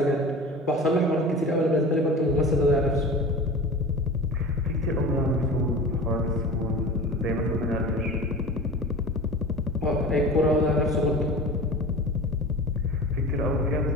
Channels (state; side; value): normal; both; correlation 0.34